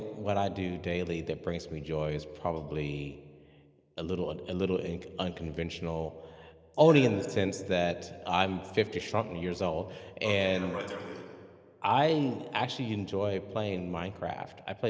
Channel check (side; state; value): both; identical; correlation 1.00